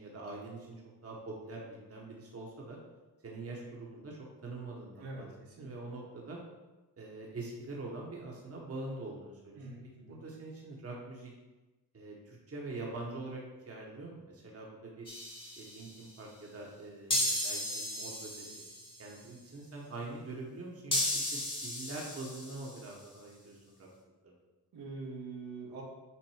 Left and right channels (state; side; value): normal; both; correlation 0.15